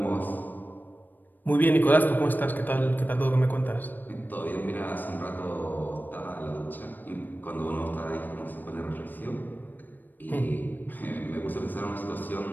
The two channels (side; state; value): right; late; 0.089 ms